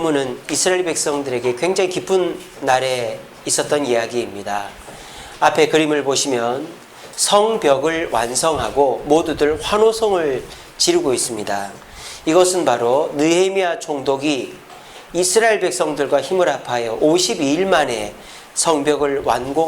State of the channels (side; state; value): both; identical; correlation 1.00